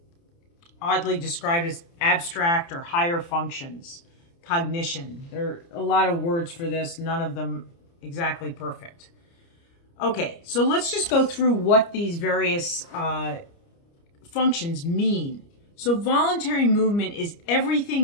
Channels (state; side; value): late; right; 29 ms